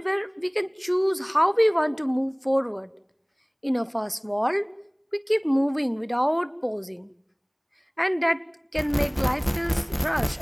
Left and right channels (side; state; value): both; identical; correlation 1.00